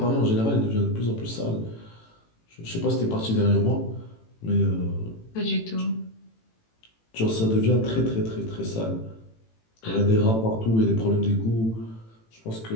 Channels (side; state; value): right; late; 18 ms